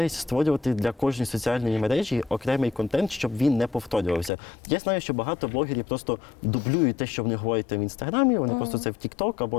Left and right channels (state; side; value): drops out; right; at 4.3 s